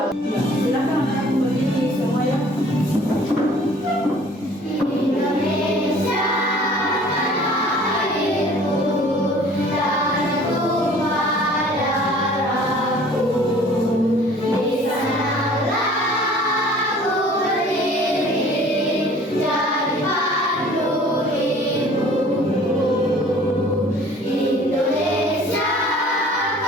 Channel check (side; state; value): both; normal; correlation 0.51